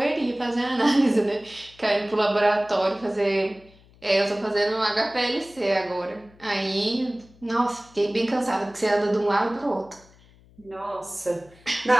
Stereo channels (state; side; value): noise; left; hum, 27 dB below the sound